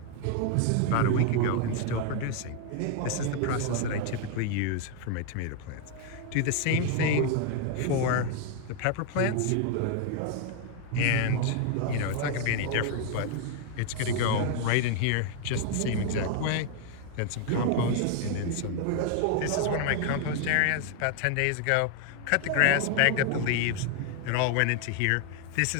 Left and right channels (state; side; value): different; both; correlation 0.00